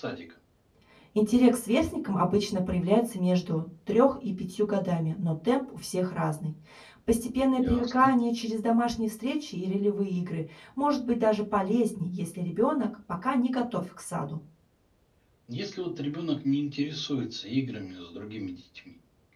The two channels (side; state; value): both; identical; correlation 1.00